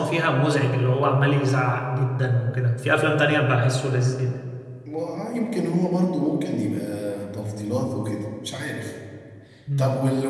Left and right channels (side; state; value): both; identical; correlation 1.00